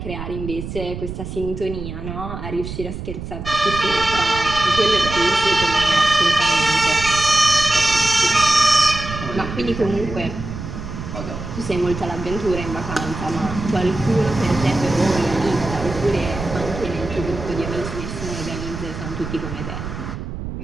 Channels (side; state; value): right; noise; rumble, 8 dB below the sound